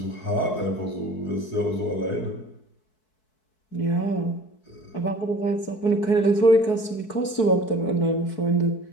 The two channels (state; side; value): late; right; 4.6 ms